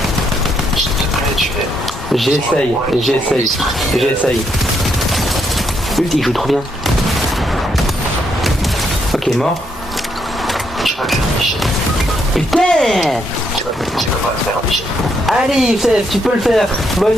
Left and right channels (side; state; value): both; normal; correlation 0.76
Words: S'il te plaît, tu es. J'essaye. Putain, il joue trop bien. Ok, mort. Tu vas le faire, Michel. Putain. Tu vas pas le faire, Michel. Allez Youssef, tu peux le faire.